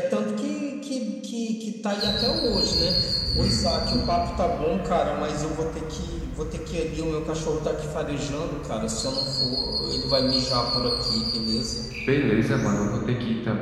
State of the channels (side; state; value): both; identical; correlation 1.00